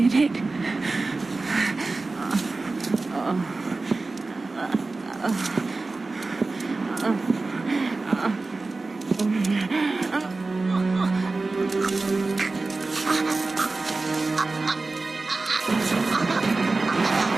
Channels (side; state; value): left; quieter; 3.5 dB